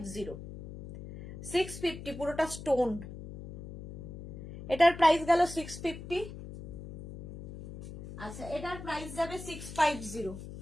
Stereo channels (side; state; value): left; noise; hum, 12 dB below the sound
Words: 650, পুরোটা স্টোন। এটার প্রাইস গেল 650। আচ্ছা, এটার প্রাইস যাবে 650,